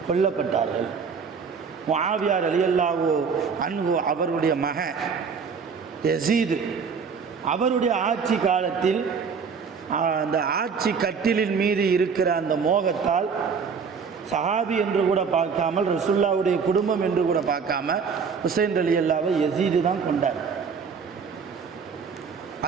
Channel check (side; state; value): left; quieter; 5.9 dB